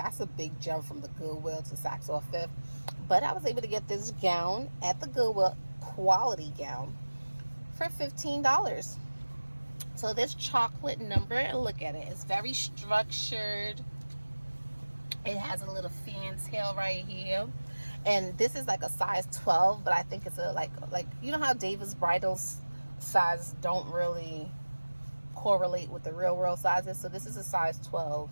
a big jump from the Goodwill to Saks or Fifth. But I was able to get this gown at the Goodwill, quality gown, for $15. So this chocolate number, and look at it, it's very structured. It has a little fantail right here. And this is like a size 12, but I think it's a like you know how David's bridals size don't really correlate with the real world sizes. So this is a size 12,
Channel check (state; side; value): inverted; both; correlation -1.00